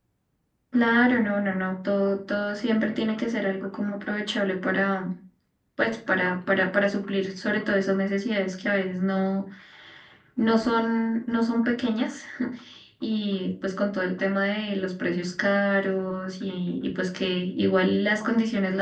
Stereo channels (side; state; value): both; identical; correlation 1.00